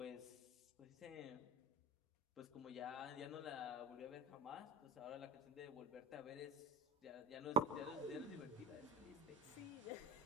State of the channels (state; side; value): normal; both; correlation 0.26